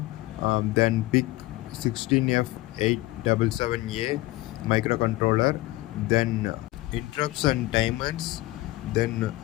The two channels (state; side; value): quieter; right; 18.6 dB